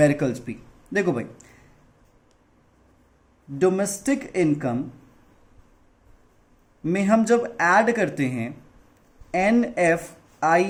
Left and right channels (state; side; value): identical; both; correlation 1.00